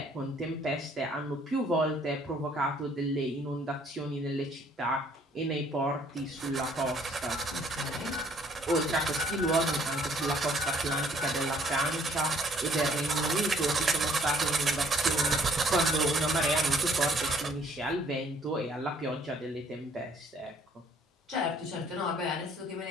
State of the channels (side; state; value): both; normal; correlation 0.62